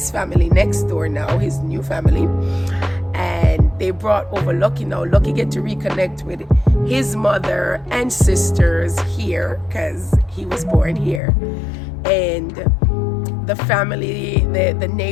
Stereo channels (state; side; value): drops out; right; at 11.2 s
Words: family next door now, his new family, and they brought over Lucky. Now Lucky get to reconnect with his mother and sisters here, because he was born here. And the family, the